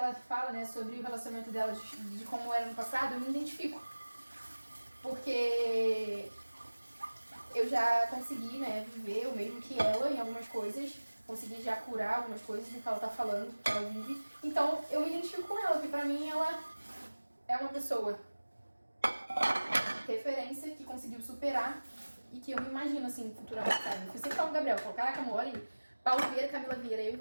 fala, né, sobre o relacionamento dela, de como era no passado, eu me identifico. Porque eu já consegui, né, viver o mesmo que ela em algumas coisas, consegui já curar algumas coisas do que ela tá falando, que ela vive. Então, eu me identifico com ela, porque pra mim ela é uma pessoa referência que conseguiu superar e que eu me imagino, assim, futuramente, sabe? Eu sempre falo com o Gabriel, falo, caraca, amor, olha aí, Paulo Vieira, Camila Vieira, eu e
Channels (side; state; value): both; inverted; correlation -1.00